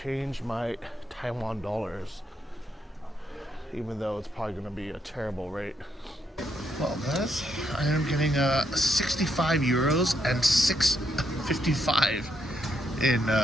my Taiwan dollars, even though it's probably gonna be a terrible rate. Well, guys, I am getting 65 euros and 6.55 in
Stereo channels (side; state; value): both; normal; correlation 0.77